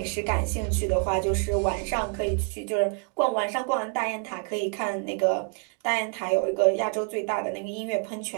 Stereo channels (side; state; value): left; quieter; 39.3 dB